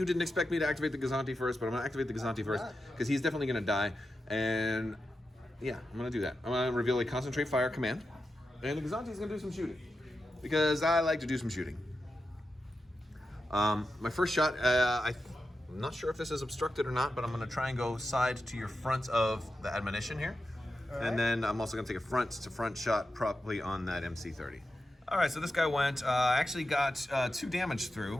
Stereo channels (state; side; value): normal; both; correlation 0.90